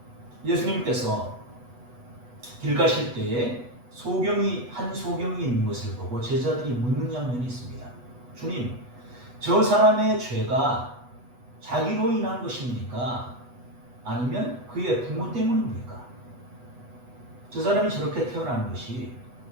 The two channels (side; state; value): left; late; 8.1 ms